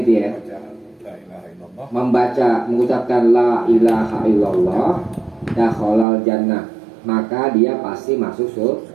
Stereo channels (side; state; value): left; drops out; at 6.1 s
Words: dia membaca, mengucapkan la ilaha illallah dakhalal jannah, maka dia pasti masuk